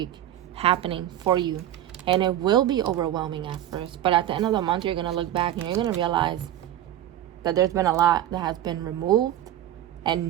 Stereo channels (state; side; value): quieter; left; 12.2 dB